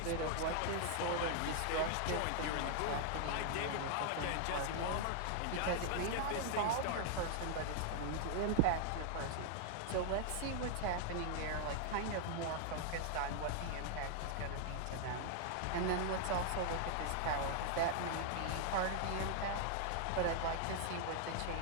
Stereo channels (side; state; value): both; different; correlation 0.00